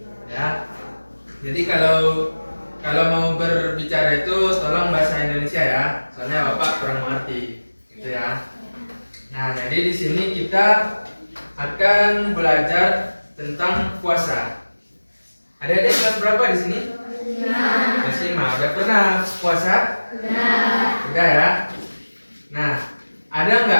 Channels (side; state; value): both; inverted; correlation -1.00